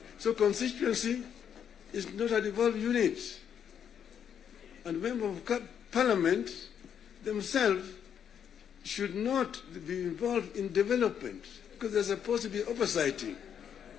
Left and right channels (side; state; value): right; quieter; 8.4 dB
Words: So constituency is not a devolved unit. And members of parliament themselves should not be involved in development because there's supposed to be oversighting.